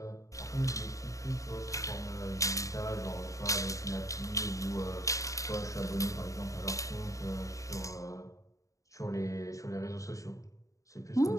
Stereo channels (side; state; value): right; late; 0.16 ms